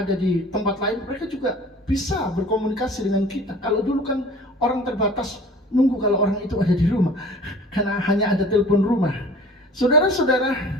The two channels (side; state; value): both; normal; correlation 0.45